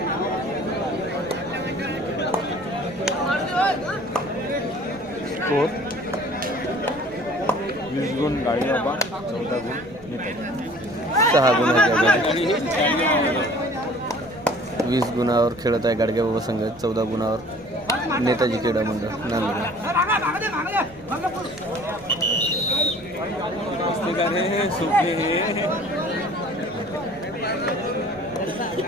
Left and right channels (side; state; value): right; noise; rumble, 22 dB below the sound